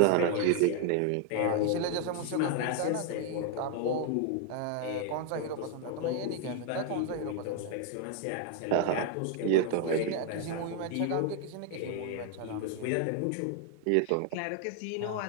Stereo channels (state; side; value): different; both; correlation 0.01